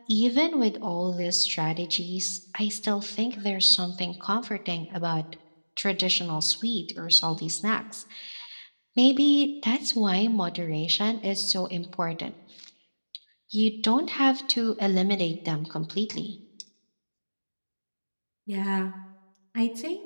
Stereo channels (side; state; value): both; inverted; correlation -1.00